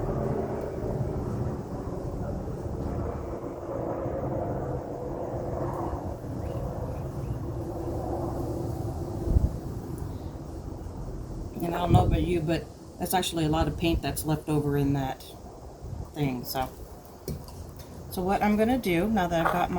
And I don't know about you, but that's actually a lot of paint that's left over in that thing. So what I'm going to do, now that I've got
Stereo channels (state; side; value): identical; both; correlation 1.00